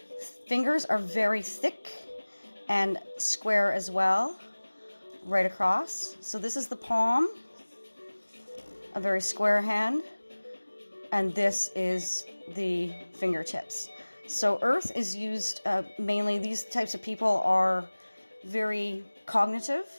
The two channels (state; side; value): inverted; both; correlation -1.00